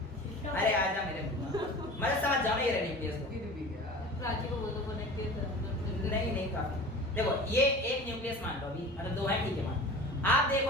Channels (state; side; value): normal; both; correlation 0.38